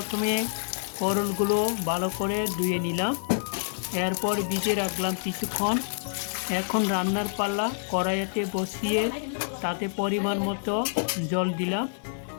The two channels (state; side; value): silent; right; digital silence